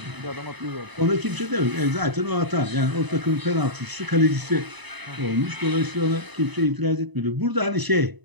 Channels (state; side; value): late; left; 1.0 ms